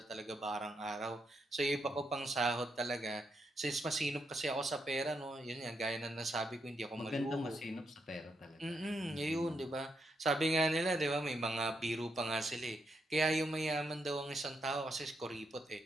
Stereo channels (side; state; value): both; normal; correlation 0.80